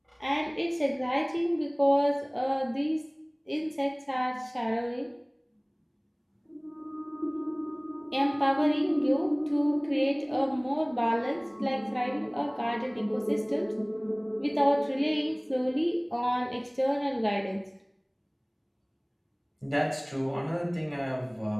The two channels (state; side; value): identical; both; correlation 1.00